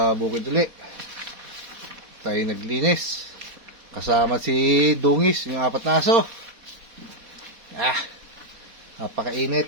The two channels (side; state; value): left; late; 4.1 ms